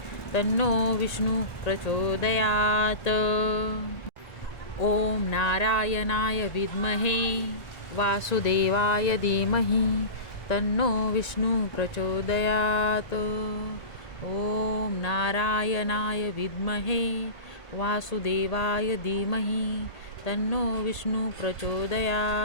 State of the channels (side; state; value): right; late; 1.6 ms